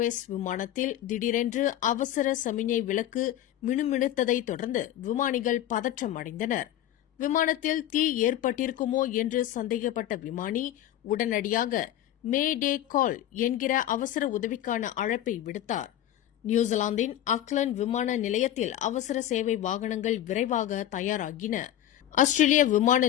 விமானத்தில் திடீரென்று அவசர சமிஞை விளக்கு மினுமினுத்ததைத் தொடர்ந்து விமானிகள் பதற்றம் அடைந்தனர். விமானத்தில் தீ ஏற்பட்டிருக்குமோ என்று சந்தேகப்பட்ட விமானி உடனடியாக மே டே கால் என்கிற அவசர உதவிக்கான அழைப்பை விடுத்தார். நியூசிலாந்தின் ஆக்லாந்து விமான நிலையத்தில் அவசர சேவை வாகனங்கள் விரைவாக தயாராகின. ஆஸ்திரேலிய விமான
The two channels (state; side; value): quieter; right; 12.2 dB